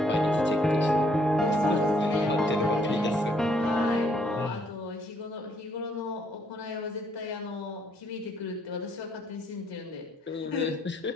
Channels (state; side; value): normal; both; correlation 0.69